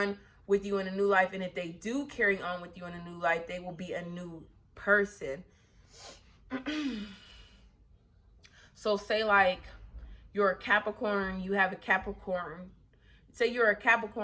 with you in a new life, and if they do carry on with you in a new life, they will be a new person. So say, like, you're a Capricorn, you have a Capricorn. Say you're a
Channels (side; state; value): both; identical; correlation 1.00